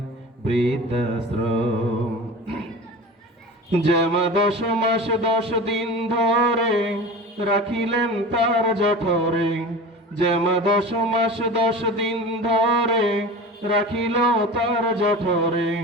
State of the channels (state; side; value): normal; both; correlation 0.34